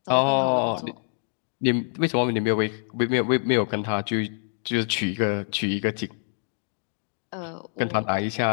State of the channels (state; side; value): silent; right; digital silence